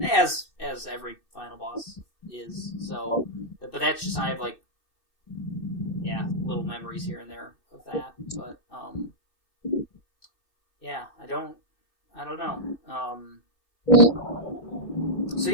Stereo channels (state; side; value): late; right; 2.6 ms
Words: as every final boss is, so but that's just I have like little memories here and there of that. But yeah, I don't know. So